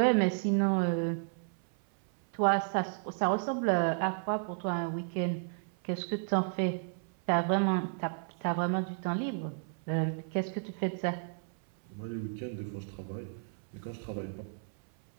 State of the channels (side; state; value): left; silent; 56 dB below the other